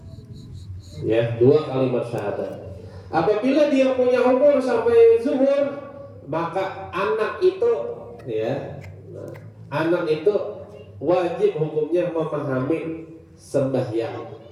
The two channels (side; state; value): both; identical; correlation 1.00